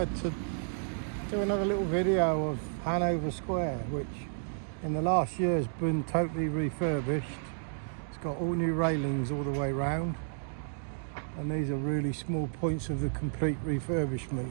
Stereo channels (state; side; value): silent; left; digital silence